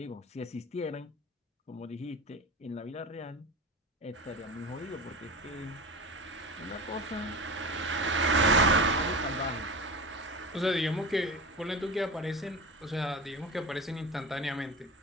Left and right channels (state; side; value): normal; both; correlation 0.30